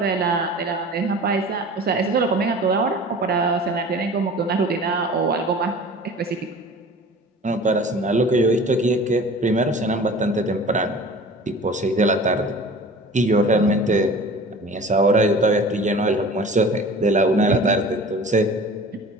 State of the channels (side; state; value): both; normal; correlation 0.41